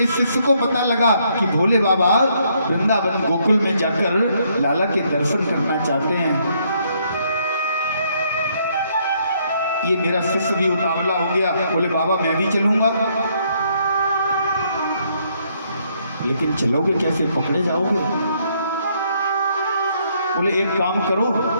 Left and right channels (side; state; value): both; inverted; correlation -0.71